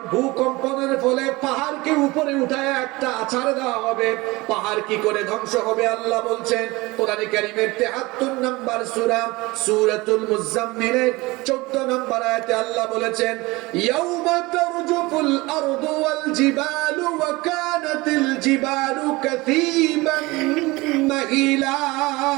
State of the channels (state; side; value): quieter; left; 22.1 dB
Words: ভূকম্পনের ফলে পাহাড়কে উপরে উঠায় একটা আছাড় দেওয়া হবে, পাহাড় কি করে ধ্বংস হবে আল্লাহ বলছেন কোরআনে কারীমের ৭৩ নম্বর সূরা সূরাতুল মুজাম্মিলের ১৪ নম্বর আয়াতে আল্লাহ বলেছেন, ইয়াউমা তারজুফুল আরদু ওয়াল জিবালু ওয়া কানাতিল জিবালু কাসীবান মাহিলা।